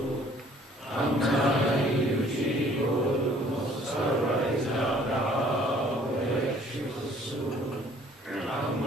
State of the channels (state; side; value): normal; both; correlation 0.57